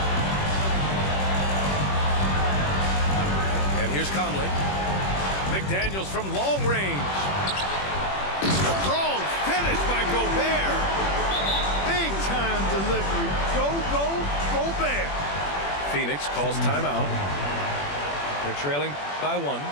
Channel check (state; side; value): late; right; 21 ms